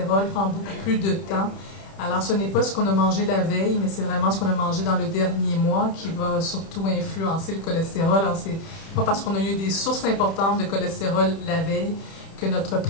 prend beaucoup plus de temps. Alors, ce n'est pas ce qu'on a mangé la veille, mais c'est vraiment ce qu'on a mangé dans le dernier mois qui va surtout influencer le cholestérol. Alors, c'est pas parce qu'on a eu des sources importantes de cholestérol la veille que notre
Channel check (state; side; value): late; right; 31 ms